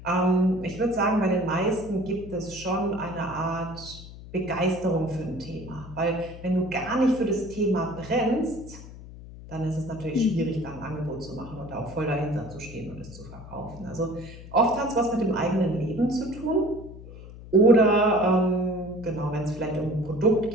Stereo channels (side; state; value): left; noise; hum, 15 dB below the sound